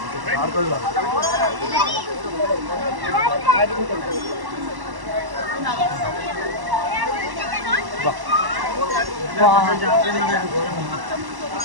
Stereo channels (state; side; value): late; left; 1.1 ms